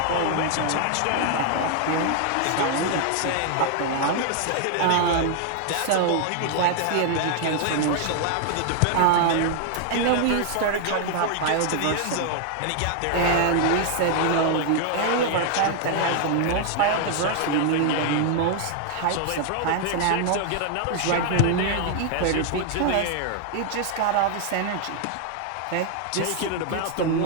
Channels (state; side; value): different; both; correlation 0.00